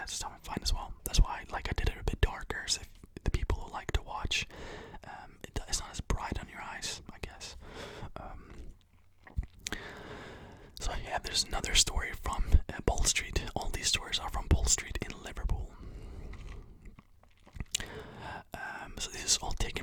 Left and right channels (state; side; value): identical; both; correlation 1.00